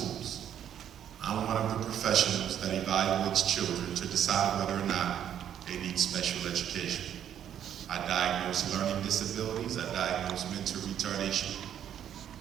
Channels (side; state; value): left; quieter; 9.8 dB